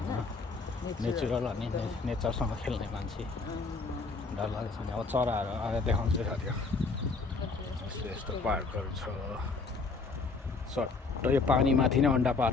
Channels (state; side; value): quieter; right; 4.1 dB